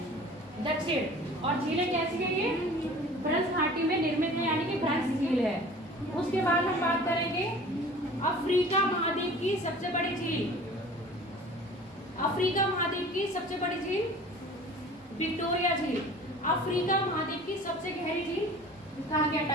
दक्षिण। और झीलें कैसी है ये भ्रंश घाटी में निर्मित है, यानी कि भ्रंश झील है। उसके बाद हम बात करेंगे अफ्रीका महाद्वीप की सबसे बड़ी झील। अफ्रीका महाद्वीप की सबसे बड़ी झील विक्टोरिया झील। अफ्रीका महाद्वीप की सबसे गहरी झील कहाँ गया?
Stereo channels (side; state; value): both; normal; correlation 0.44